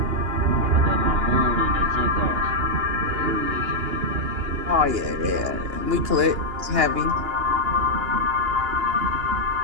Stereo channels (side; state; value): left; late; 2.9 ms